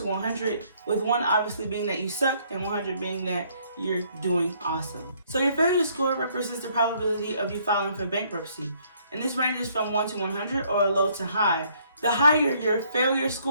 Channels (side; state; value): both; inverted; correlation -0.65